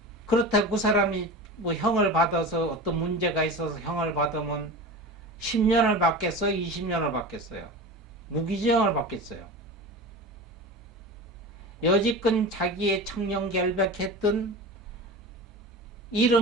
그렇다고 그 사람이 뭐 형을 받아서 어떤 문제가 있어서 형을 받으면 10년을 받겠어요? 20년을 받겠어요? 무기징역을 받겠어요? 여지껏 자기의 청렴결백했던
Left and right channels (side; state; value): both; normal; correlation 0.30